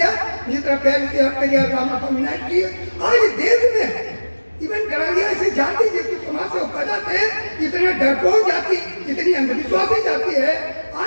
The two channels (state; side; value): inverted; both; correlation -1.00